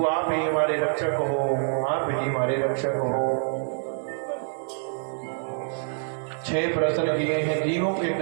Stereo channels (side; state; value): left; silent; digital silence